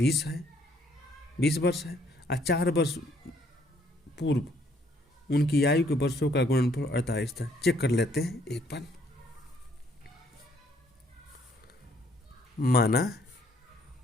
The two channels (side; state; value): both; normal; correlation 0.66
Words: वर्ष है और 4 वर्ष पूर्व उनकी आयु के वर्षों का गुणनफल 48 था। चेक कर लेते हैं एक बार। माना